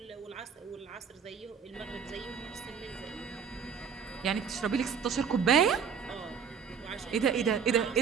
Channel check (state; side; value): quieter; left; 6.8 dB